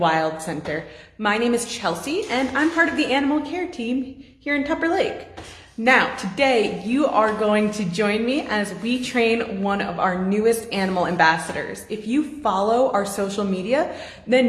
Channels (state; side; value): identical; both; correlation 1.00